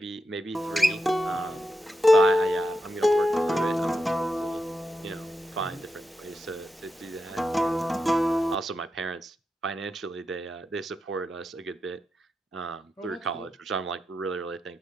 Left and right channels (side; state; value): both; normal; correlation 0.87